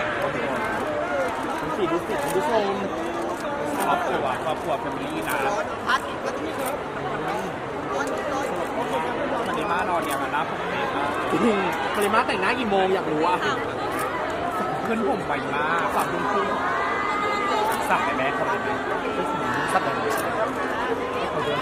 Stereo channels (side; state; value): both; identical; correlation 1.00